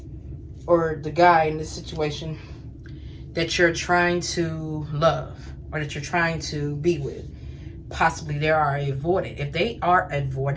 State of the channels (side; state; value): both; identical; correlation 1.00